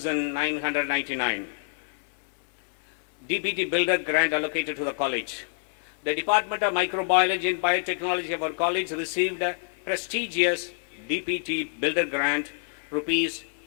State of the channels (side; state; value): right; silent; digital silence